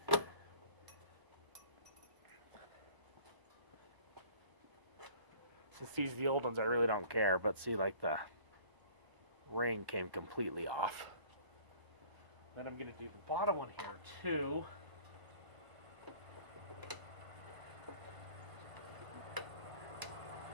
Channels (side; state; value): left; late; 1.0 ms